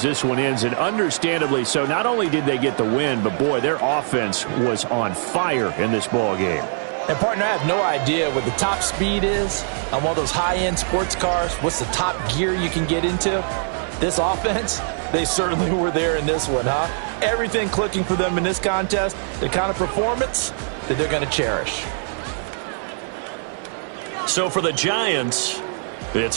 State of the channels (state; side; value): silent; left; 58 dB below the other